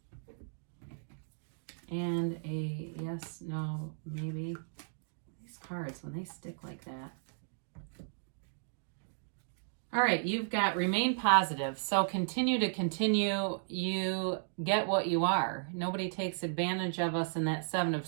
And a yes, no, maybe. These cards, when they stick like that. All right, you've got remain positive. So continue to continue. You get what you are. Nobody takes advantage of us in that Seven of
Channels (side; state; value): left; silent; digital silence